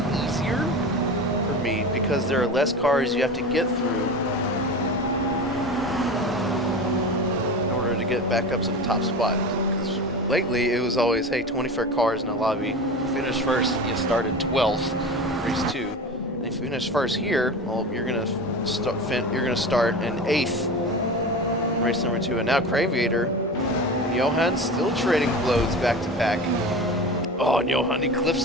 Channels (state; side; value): normal; both; correlation 0.30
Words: easier for Mead, because there are less cars you have to get through in order to get back up to the top spot. Because lately, it was always, hey, 24 cars in a lobby. You finish first, you started 12th, race 2. And if you finish first here, well, you're gonna start in 8th, race number 2. And now Graviator and Johan still trading blows back to back. Oh, and Johan, he clips